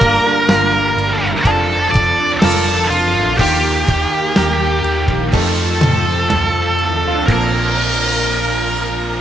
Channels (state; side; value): normal; both; correlation 0.81